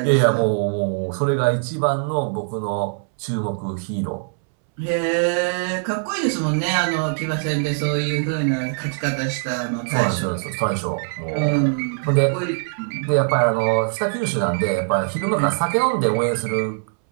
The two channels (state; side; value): silent; left; 64 dB below the other